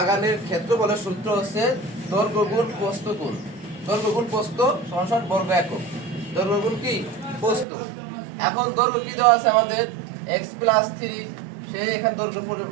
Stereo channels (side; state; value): left; drops out; at 7.7 s